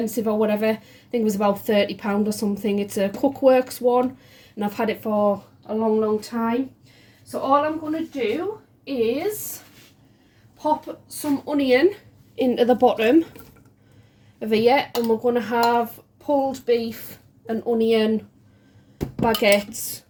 or whatever. I think it was about £30 or something. It's a Cookworks one, and I've had it for a long time. So all I'm going to do is pop some onion into the bottom of here, and we're going to have pulled beef and onion baguettes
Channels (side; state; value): both; identical; correlation 1.00